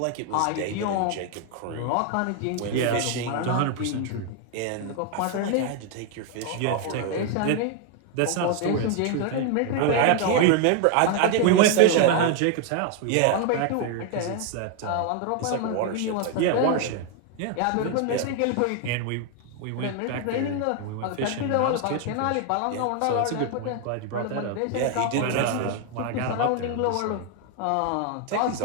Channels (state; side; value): different; both; correlation 0.00